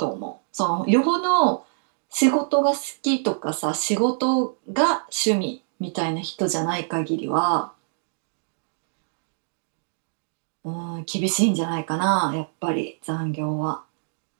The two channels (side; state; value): left; silent; digital silence